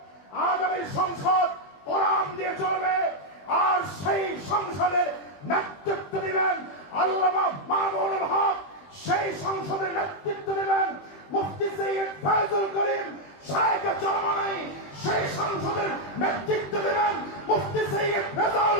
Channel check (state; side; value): late; right; 21 ms